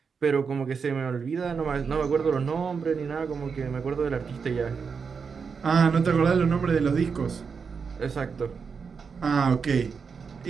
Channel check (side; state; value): left; quieter; 5.7 dB